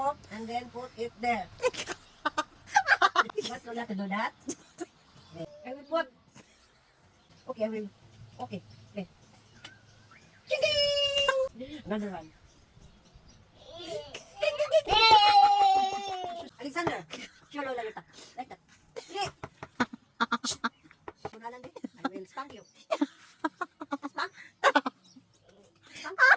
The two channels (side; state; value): both; identical; correlation 1.00